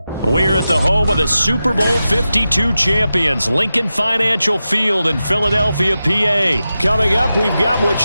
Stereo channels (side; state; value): both; inverted; correlation -0.92